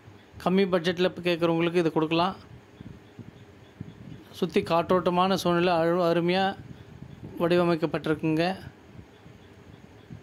கம்மி பட்ஜெட்டில் கேட்குறவங்களுக்கு இது கொடுக்கலாம். சுற்றி காற்றோட்டமான சூழ்நிலை அருமையாக வடிவமைக்கப்பட்டிருக்குங்க.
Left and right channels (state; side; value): identical; both; correlation 1.00